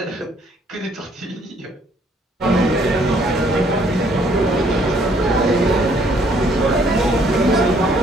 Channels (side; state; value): both; normal; correlation 0.64